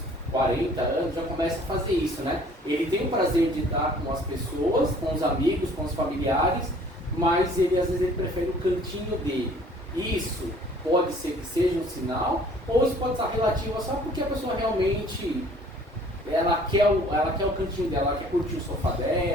40 anos já começam a fazer isso, né? Ele tem o prazer de estar com as pessoas, com os amigos, com os familiares, mas às vezes ele prefere o cantinho dele. Isso pode ser que seja um sinal, ou isso pode estar relativo só porque a pessoa realmente ela quer o cantinho dela, ela quer curtir o sofá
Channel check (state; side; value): normal; both; correlation 0.54